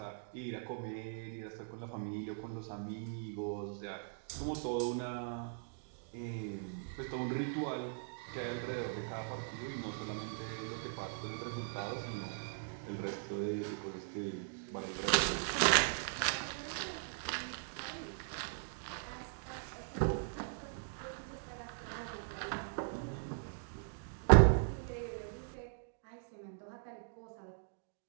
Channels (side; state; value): left; silent; digital silence